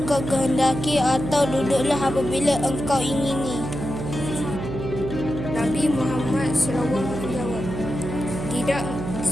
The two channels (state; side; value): noise; right; hum, 6 dB below the sound